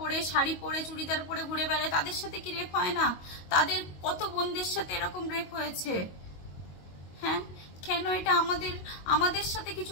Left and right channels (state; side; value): late; right; 22 ms